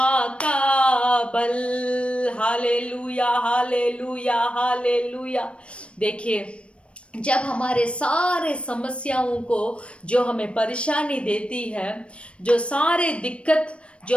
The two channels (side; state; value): right; late; 0.060 ms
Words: का बल। Hallelujah, hallelujah, hallelujah. देखिए, जब हमारे सारे समस्याओं को जो हमें परेशानी देती है, जो सारे दिक्कत